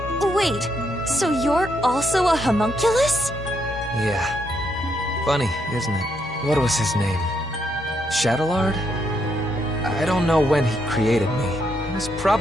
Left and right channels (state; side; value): normal; both; correlation 0.77